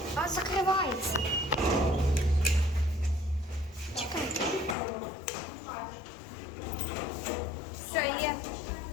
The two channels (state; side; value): drops out; right; at 4.8 s